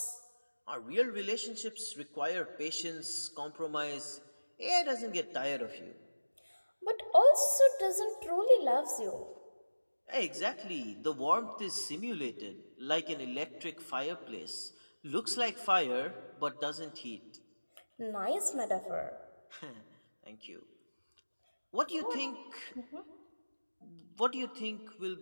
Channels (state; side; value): inverted; both; correlation -1.00